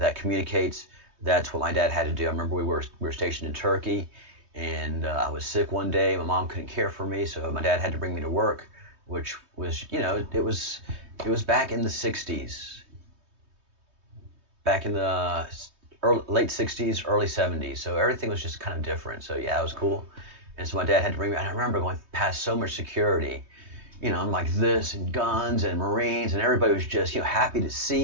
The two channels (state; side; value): late; left; 3.2 ms